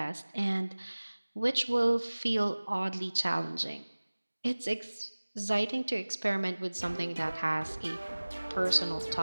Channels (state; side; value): inverted; both; correlation -1.00